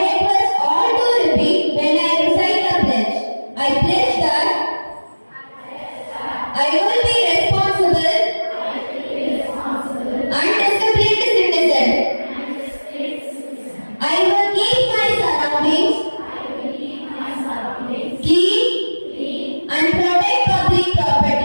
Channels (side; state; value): both; inverted; correlation -1.00